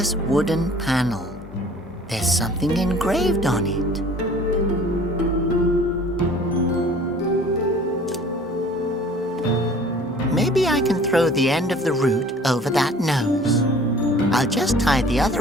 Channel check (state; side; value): normal; both; correlation 0.49